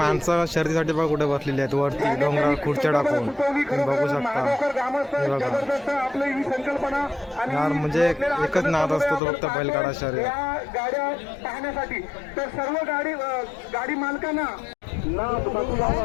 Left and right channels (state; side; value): drops out; right; at 9.2 s